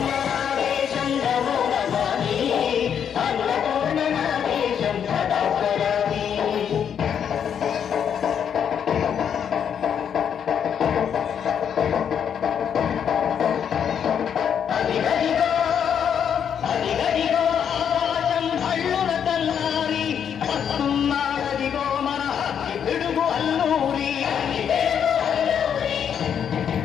నా దేశం నమో నమామి అన్నపూర్ణ నా దేశం సదా స్మరామి అదిగదిగో అదిగదిగో ఆకాశం భళ్ళున తల్లారి వస్తున్నాడదిగో మన హక్కి పిడుగు అల్లూరి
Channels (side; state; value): right; quieter; 8.2 dB